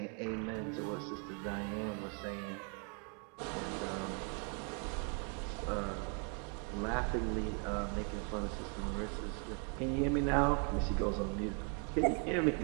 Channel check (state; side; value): quieter; left; 39.1 dB